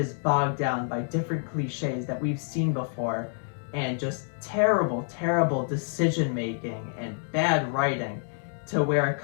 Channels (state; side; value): silent; right; 60 dB below the other